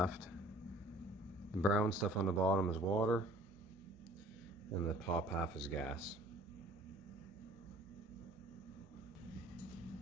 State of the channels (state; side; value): normal; both; correlation 0.51